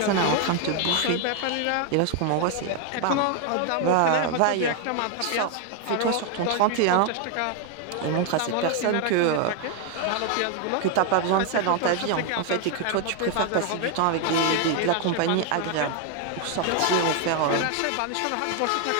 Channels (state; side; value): different; both; correlation 0.00